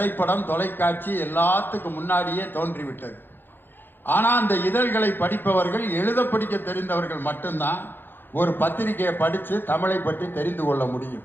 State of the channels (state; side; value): late; right; 0.098 ms